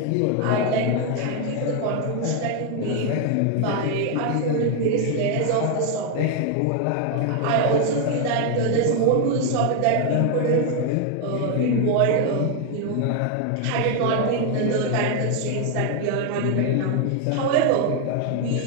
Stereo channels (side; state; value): both; different; correlation 0.01